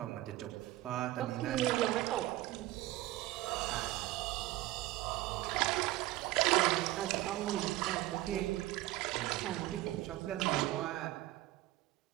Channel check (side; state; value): left; quieter; 17.0 dB